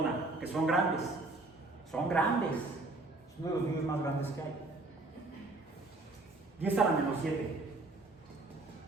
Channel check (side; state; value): left; quieter; 3.2 dB